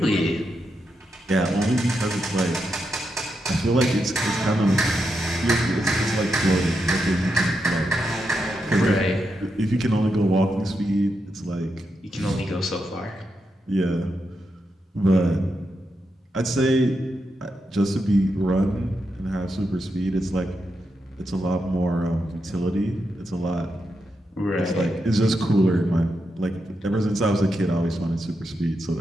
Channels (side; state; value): both; normal; correlation 0.85